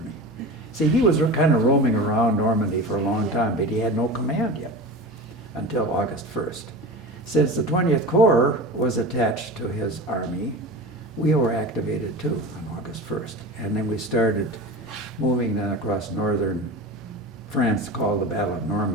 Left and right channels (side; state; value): both; normal; correlation 0.30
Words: See, he was kind of roaming around Normandy for a long time, but he had no command yet until August 1st. Since the 20th Corps was attached to his army, we were activated too on August 1st. And then we started moving then across northern France, called the Battle of